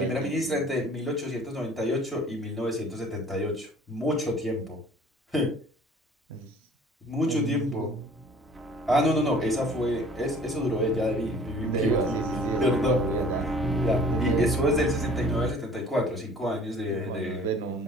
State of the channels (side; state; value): both; normal; correlation 0.51